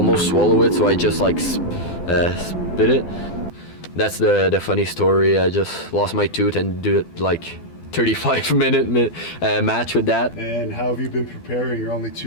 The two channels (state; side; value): late; right; 12 ms